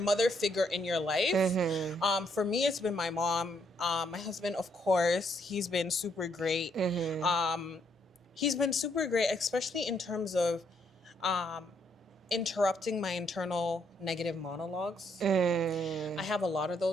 figure in your life. For me, it's been my mom. My husband, of course, he's been super great. He's been super great, especially in terms of interrupting my internal negative monologues. I have a lot of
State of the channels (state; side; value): normal; both; correlation 0.72